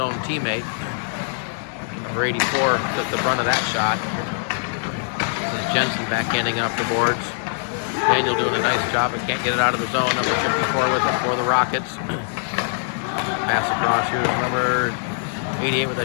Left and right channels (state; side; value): silent; right; digital silence